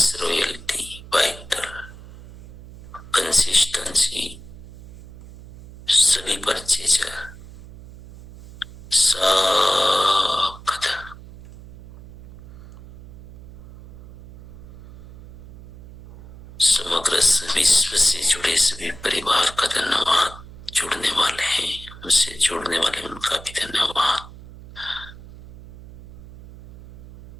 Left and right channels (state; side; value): noise; right; hum, 17 dB below the sound